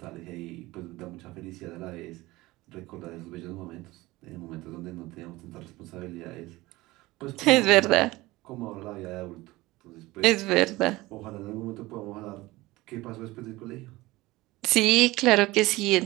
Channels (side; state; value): left; quieter; 19.7 dB